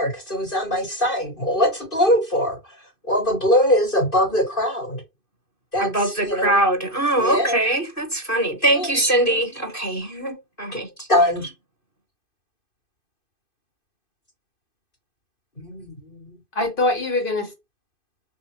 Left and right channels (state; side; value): late; right; 2.5 ms